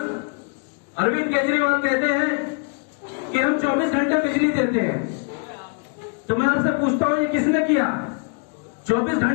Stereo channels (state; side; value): quieter; right; 39.3 dB